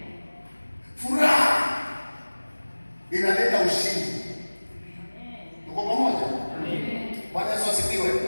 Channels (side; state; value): both; inverted; correlation -1.00